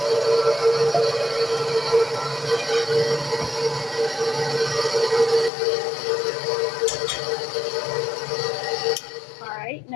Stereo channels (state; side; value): drops out; right; at 5.5 s